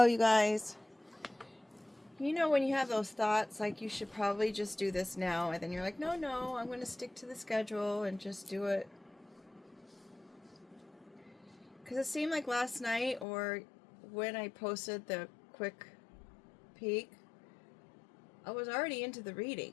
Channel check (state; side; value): drops out; right; at 13.2 s